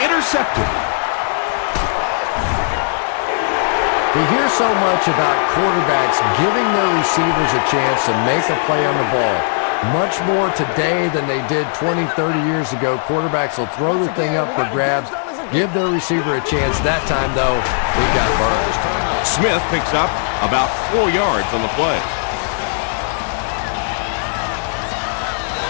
intercepted. We hear so much about quarterbacks giving their receivers a chance to make a play on the ball. Much more today than they did 20, 30 years ago. Quarterbacks will throw the thing up for grabs, give their receiver a chance. That time, though, he got burned. Smith picks up about 4 yards on the play.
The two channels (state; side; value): silent; right; digital silence